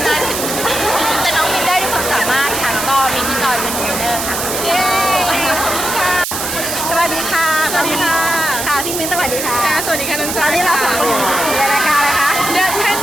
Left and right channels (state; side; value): noise; right; hiss, 3 dB below the sound